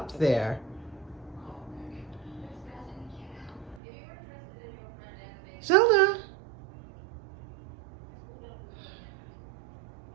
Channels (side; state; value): left; drops out; at 3.8 s